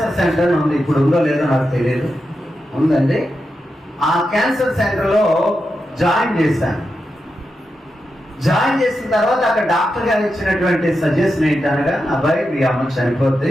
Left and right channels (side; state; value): both; normal; correlation 0.88